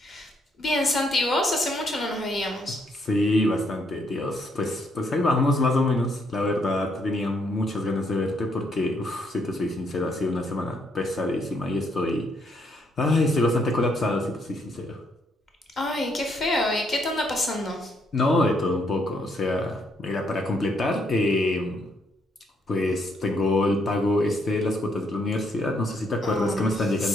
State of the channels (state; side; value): normal; both; correlation 0.73